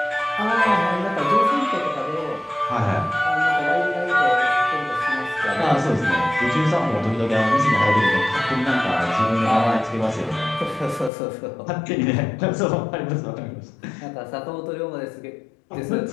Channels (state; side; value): drops out; right; at 11.1 s